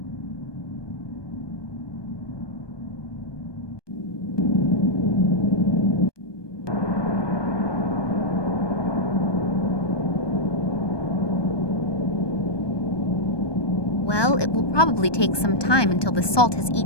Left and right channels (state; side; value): late; right; 1.2 ms